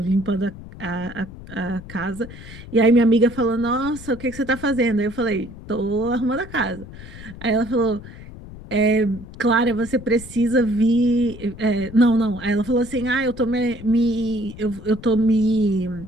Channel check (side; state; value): left; noise; rumble, 15 dB below the sound